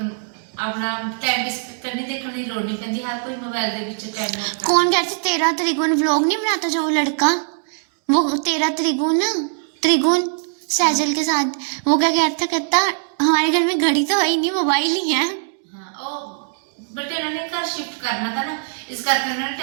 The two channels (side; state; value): left; silent; digital silence